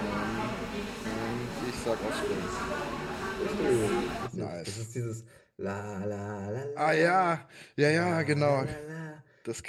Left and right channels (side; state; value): both; identical; correlation 1.00